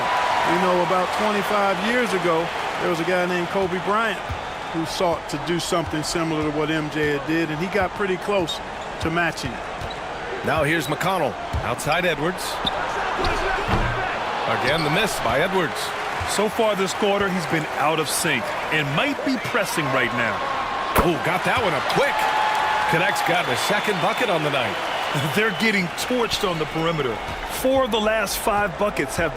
You know, about 25 years ago, there was a guy named Kobe Bryant who sought to do something similar to what MJ had did, and he got pretty close to matching it. Now here's McConnell. Outside Edwards. Again, the miss by Edwards. So far this quarter, he's been out of sync and might be pressing right now. Oh, got that one up quick. Connect's gotten a second bucket on the night. They're getting torched on the perimeter. 4 of the last 5 buckets have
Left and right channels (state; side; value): identical; both; correlation 1.00